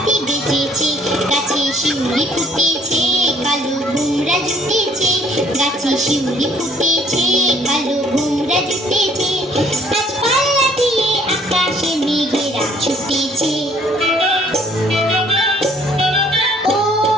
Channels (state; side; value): normal; both; correlation 0.62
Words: বেজেছে, গাছে শিউলি ফুটেছে, কালো ভুমরা জুটেছে, গাছে শিউলি ফুটেছে, কালো ভুমরা জুটেছে, আজ পাল্লা দিয়ে আকাশে মেঘেরা ছুটেছে। ও